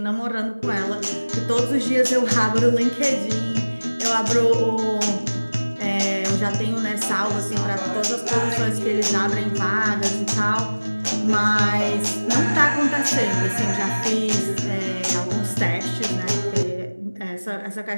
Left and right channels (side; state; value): both; inverted; correlation -1.00